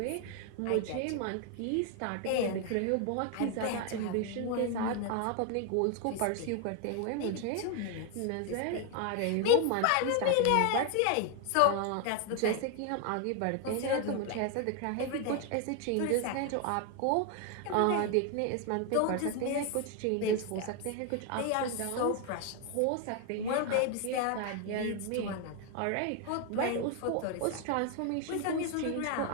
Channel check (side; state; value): both; different; correlation 0.01